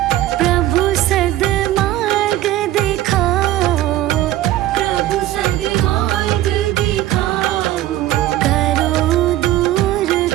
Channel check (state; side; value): quieter; left; 14.3 dB